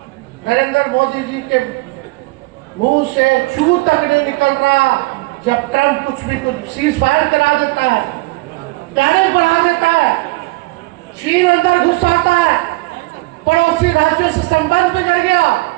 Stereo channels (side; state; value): left; quieter; 23.4 dB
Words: नरेंद्र मोदी जी के मुंह से छू तक नहीं निकल रहा जब ट्रंप कुछ सीज फायर करा देता है, टैरिफ बढ़ा देता है, चीन अंदर घुस आता है, पड़ोसी राज्यों से संबंध बिगड़ गया,